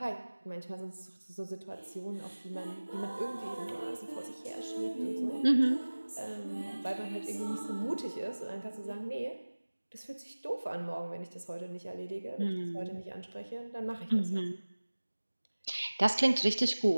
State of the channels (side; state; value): both; inverted; correlation -1.00